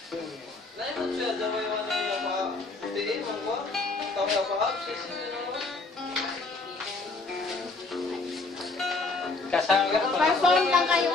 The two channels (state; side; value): quieter; right; 3.6 dB